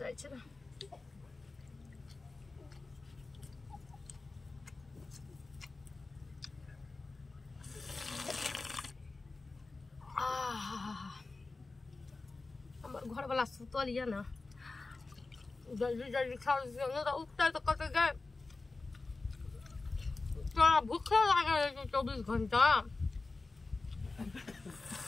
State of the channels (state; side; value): quieter; right; 3.6 dB